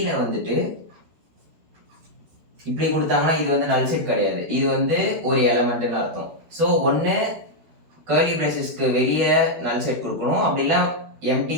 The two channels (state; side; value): late; left; 12 ms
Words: வந்துட்டு இப்படி கொடுத்தாங்கன்னா இது வந்து நல் செட் கிடையாது, இது வந்து ஒரு எலமெண்ட்னு அர்த்தம். ஸோ ஒன்று கர்லி பிரேசஸ்க்கு வெளியே நல் செட் கொடுக்கணும், அப்படிலாம் எம்டி